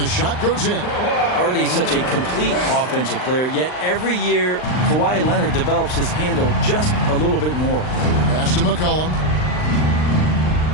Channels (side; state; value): right; late; 39 ms